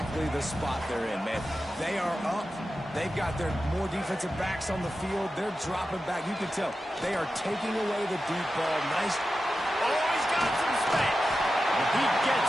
the spot they're in, man. They are up. They've got their more defensive backs on the field. They're dropping back. You can tell they are taking away the deep ball. Nice. Oh, he's got some space. He gets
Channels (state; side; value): normal; both; correlation 0.92